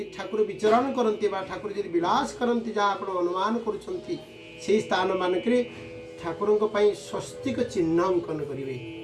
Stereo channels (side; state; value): both; identical; correlation 1.00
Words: ठाकुर विचरण करती बा ठाकुर यदि विलास करती जहाँ आप अनुमान करुँच से स्थान मानक ठाकुर स्वस्तिक चिन्ह अंकन करेंगे